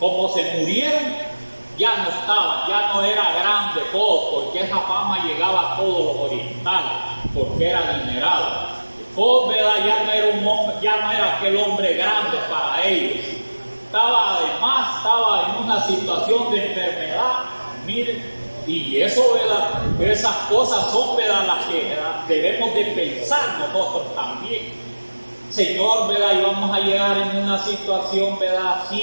se murieron, ya no estaban, ya no era grande Job, porque esa fama llegaba a todos los orientales, porque era adinerado. Job, ¿verdad? Ya no era un hombre, ya no era aquel hombre grande para ellos. Estaba en una situación de enfermedad, miren. Y eso, ¿verdad? Esas cosas son, ¿verdad? Las que, ¿verdad? Debemos de pensar nosotros también. Señor, ¿verdad? Y vamos a llegar en una situación, ¿verdad?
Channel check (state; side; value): inverted; both; correlation -1.00